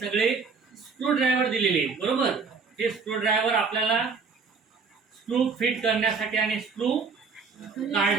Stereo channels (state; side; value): quieter; left; 5.0 dB